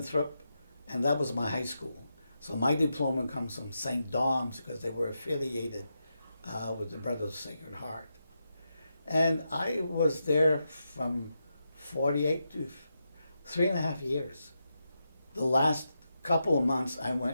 and that was my high school. So my diploma comes from St. Dom's because they were affiliated with the Brothers of the Sacred Heart. And I was there from 48 to 3.5 years. The last couple of months I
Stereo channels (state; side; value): inverted; both; correlation -0.86